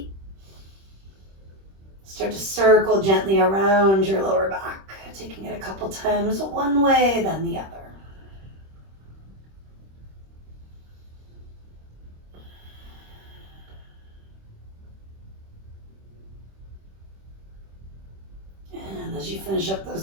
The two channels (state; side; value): late; left; 26 ms